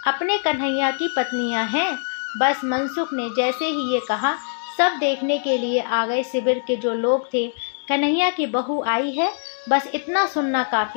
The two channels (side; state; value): right; silent; digital silence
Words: अपने कन्हैया की पत्नियां हैं। बस मनसुख ने जैसे ही ये कहा, सब देखने के लिए आ गए। शिविर के जो लोग थे, कन्हैया की बहू आई है, बस इतना सुनना